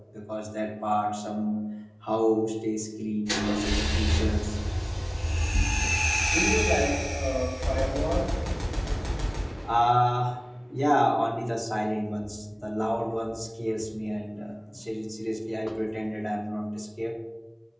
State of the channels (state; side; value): identical; both; correlation 1.00